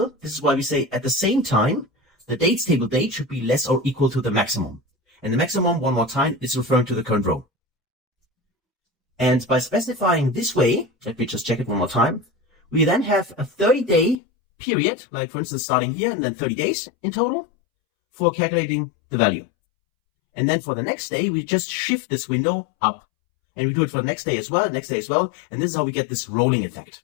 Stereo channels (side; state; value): right; drops out; at 14.2 s